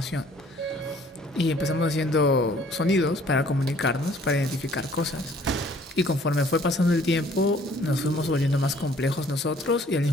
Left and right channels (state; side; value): normal; both; correlation 0.57